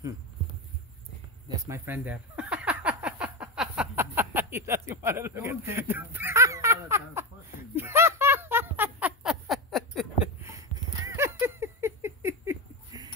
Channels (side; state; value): both; normal; correlation 0.15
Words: That's my friend there. He doesn't want to look at it.